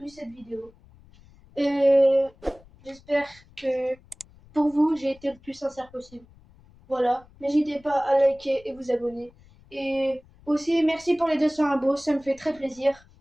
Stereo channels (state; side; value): noise; left; rumble, 26 dB below the sound